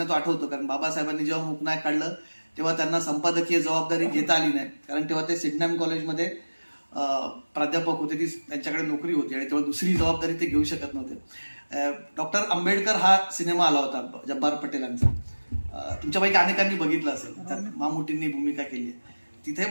तो आठवतो, कारण बाबासाहेबांनी जेव्हा मूकनायक काढलं तेव्हा त्यांना संपादकीय जबाबदारी घेता आली नाही, कारण तेव्हा ते सिडनॅम कॉलेजमध्ये प्राध्यापक होते, ती त्यांच्याकडे नोकरी होती आणि तेव्हा दुसरी जबाबदारी ते घेऊ शकत नव्हते. डॉक्टर आंबेडकर हा सिनेमा आला होता जब्बार पटेलांचा, तुमच्यापैकी अनेकांनी बघितलं असेल, त्यात मामुटींनी भूमिका केली आहे. तिथे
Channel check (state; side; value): inverted; both; correlation -1.00